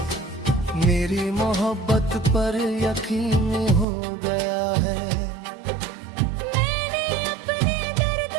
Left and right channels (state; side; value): drops out; left; at 3.9 s